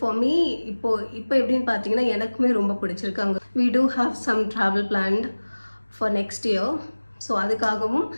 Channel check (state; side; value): inverted; both; correlation -1.00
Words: for me இப்போ எப்படின்னு பாத்தீங்கன்னா எனக்குமே ரொம்ப பிடிச்சிருக்கு. We do have some travel planned for next year. So அதுக்காகவும்